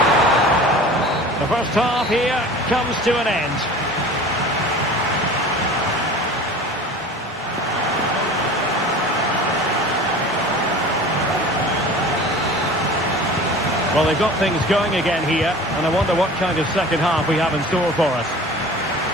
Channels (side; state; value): both; normal; correlation 0.40